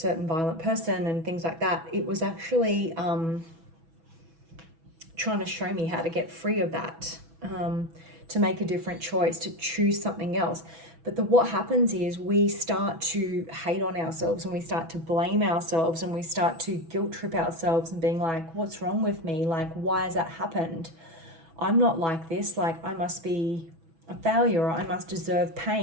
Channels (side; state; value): left; late; 6.1 ms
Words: violent person and things like that, it was actually trying to show me how to get free of that, to make a different choice, to choose something else. But what happens is we start to hate on ourselves, and we start to blame ourselves, and we start to guilt trip ourselves and being like, what's wrong with me? Like, why has that happened? I'm not like this. Like, I must be a failure, or I must deserve